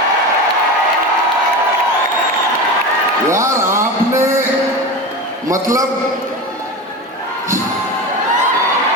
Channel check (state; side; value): normal; both; correlation 0.25